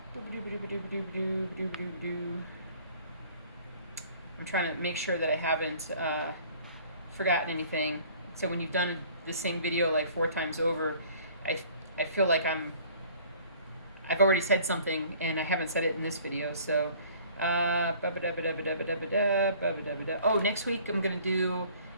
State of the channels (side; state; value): both; inverted; correlation -0.53